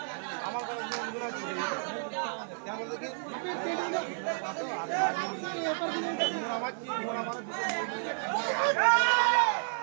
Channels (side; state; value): left; silent; digital silence